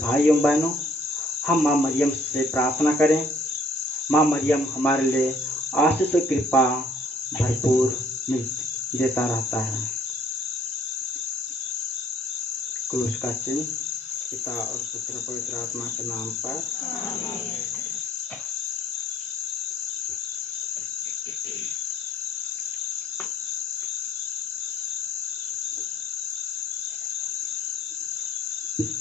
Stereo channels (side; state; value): both; normal; correlation 0.60